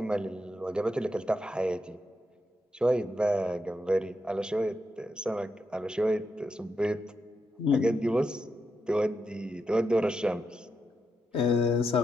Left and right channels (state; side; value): normal; both; correlation 0.84